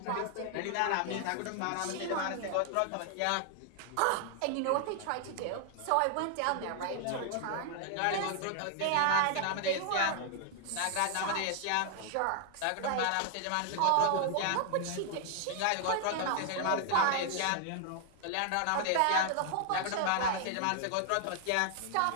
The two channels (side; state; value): both; different; correlation 0.00